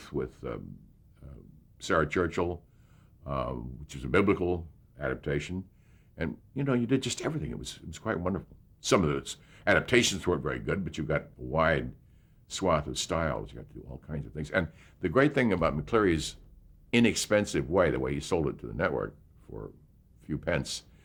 with Sarah Churchill, which is a biblical adaptation. And, you did just everything. It was quite wonderful. Some of those adaptations weren't very good, but you got a wide swath of styles. You got to do all kinds of things. And the great thing about McCleary's inexpensive way, the way he sold it to the network for a few pence,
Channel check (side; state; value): both; identical; correlation 1.00